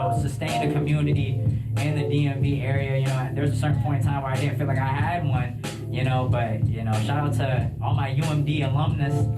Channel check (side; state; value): both; identical; correlation 1.00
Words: sustained a community in the DMV area. You know, there's a certain point in time where I didn't feel like I had one, you know, but, you know, shout out to all my UMD alumnus